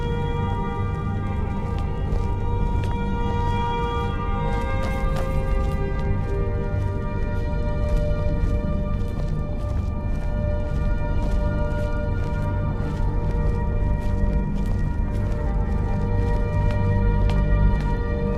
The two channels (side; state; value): both; identical; correlation 1.00